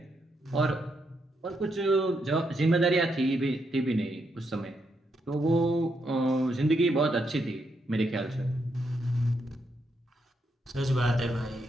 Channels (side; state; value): both; normal; correlation 0.79